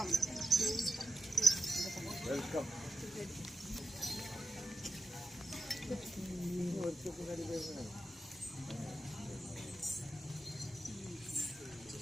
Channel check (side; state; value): both; normal; correlation 0.87